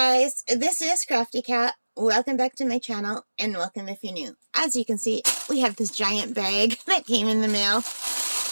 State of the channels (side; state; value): both; inverted; correlation -1.00